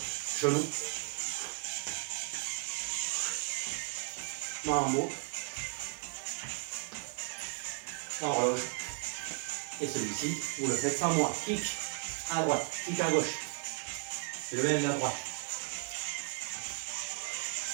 Genou. Mambo. Horloge. Et celui-ci, vous le faites sans moi. Kick à droite, kick à gauche. Le même à droite.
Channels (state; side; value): quieter; left; 39.1 dB